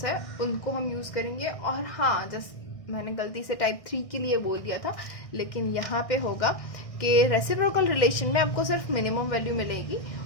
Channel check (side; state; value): right; late; 1.6 ms